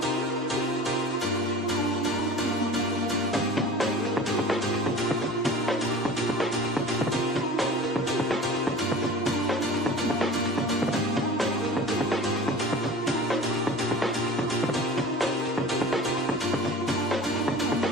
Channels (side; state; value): both; normal; correlation 0.39